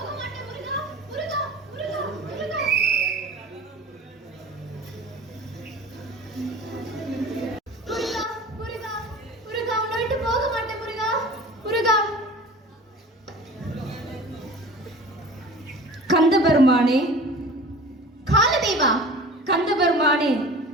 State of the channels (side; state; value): both; normal; correlation 0.40